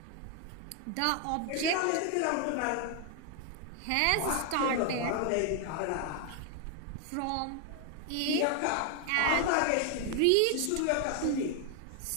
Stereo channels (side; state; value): both; different; correlation 0.01